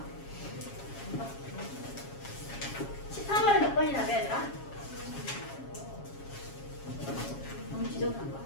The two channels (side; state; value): right; late; 7.3 ms